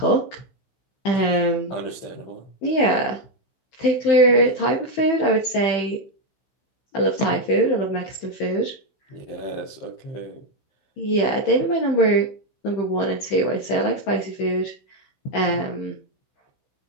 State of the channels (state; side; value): late; right; 15 ms